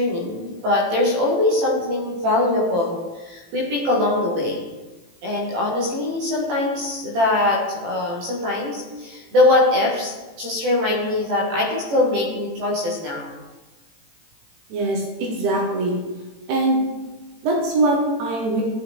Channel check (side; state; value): left; late; 18 ms